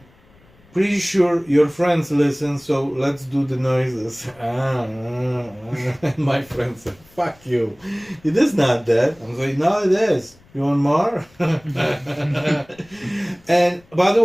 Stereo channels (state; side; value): noise; left; rumble, 29 dB below the sound